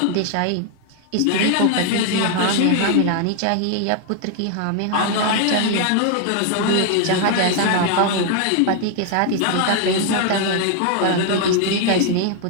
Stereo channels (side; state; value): both; different; correlation 0.00